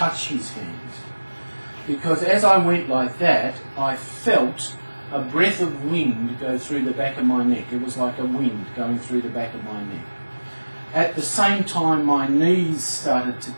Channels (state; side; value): inverted; both; correlation -1.00